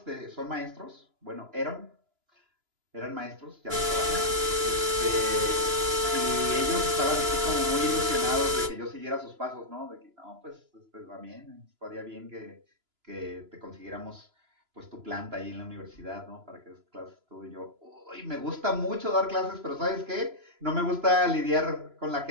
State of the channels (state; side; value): late; left; 2.9 ms